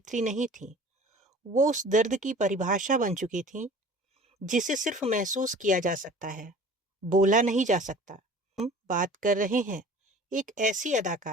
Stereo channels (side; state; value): both; normal; correlation 0.45